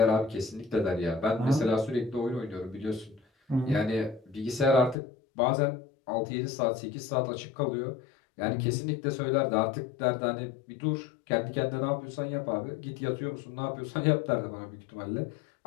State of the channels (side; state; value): right; drops out; at 5.0 s